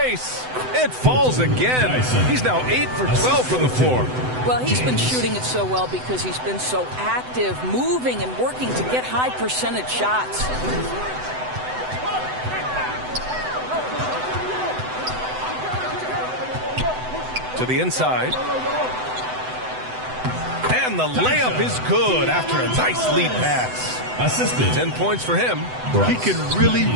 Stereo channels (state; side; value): late; left; 7.9 ms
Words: It falls again. He's now 8 for 12 from the floor. Well, he's been shooting it so well because he's been so active, moving and working to get high percentage shots. To the inside. And the layup is good after a nice lead pass. Assisted. 10 points for him. He can really